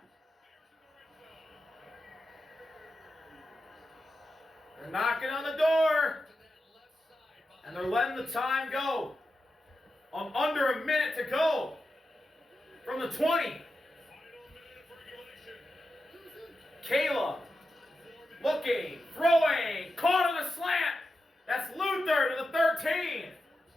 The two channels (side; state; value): both; normal; correlation 0.90